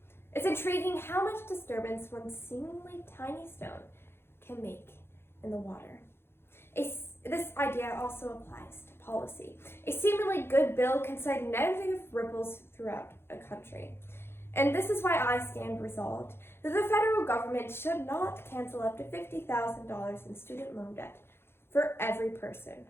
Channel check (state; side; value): late; right; 0.11 ms